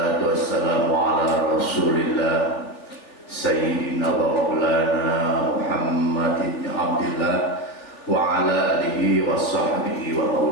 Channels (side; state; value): right; late; 3.4 ms